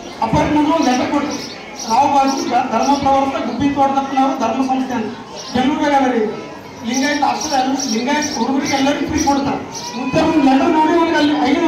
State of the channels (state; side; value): identical; both; correlation 1.00